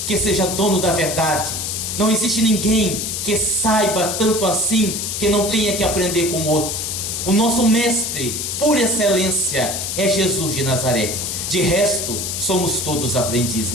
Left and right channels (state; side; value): noise; left; hiss, 3 dB below the sound